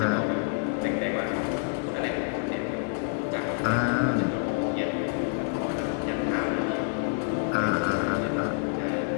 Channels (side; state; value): right; silent; digital silence